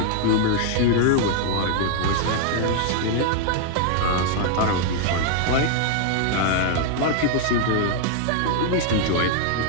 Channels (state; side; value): different; both; correlation 0.00